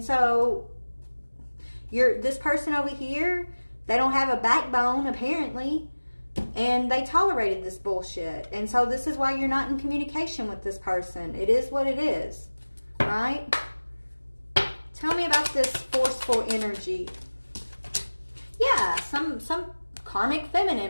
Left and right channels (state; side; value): inverted; both; correlation -1.00